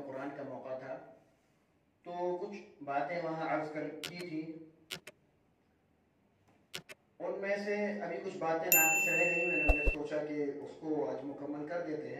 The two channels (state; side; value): identical; both; correlation 1.00